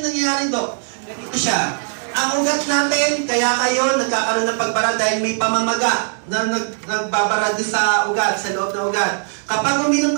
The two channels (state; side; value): silent; left; digital silence